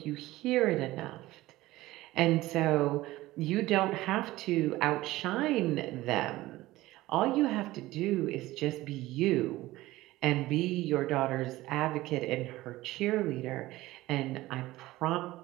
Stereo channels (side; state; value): left; quieter; 17.6 dB